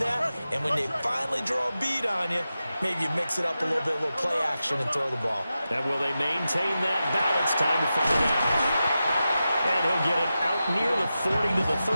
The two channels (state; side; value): inverted; both; correlation -0.92